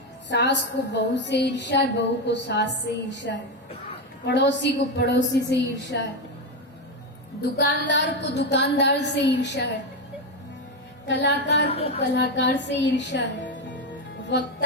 सास को बहू से ईर्ष्या है, बहू को सास से ईर्ष्या है, पड़ोसी को पड़ोसी से ईर्ष्या है। दुकानदार को दुकानदार से ईर्ष्या है, कलाकार को कलाकार से ईर्ष्या है,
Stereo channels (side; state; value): both; normal; correlation 0.11